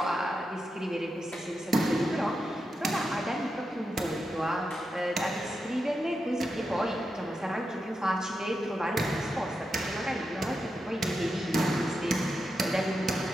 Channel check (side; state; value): both; normal; correlation 0.88